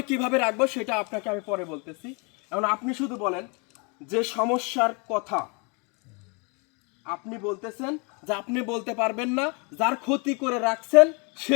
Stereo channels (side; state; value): right; quieter; 32.9 dB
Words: কিভাবে রাখবো সেটা আপনাকে আমি পরে বলতেছি। এখন আপনি শুধু বলেন যে সমস্যার কথা আপনি বলতেছেন যে আপনি বলতে পারবেন না, যার ক্ষতি করে রাখছেন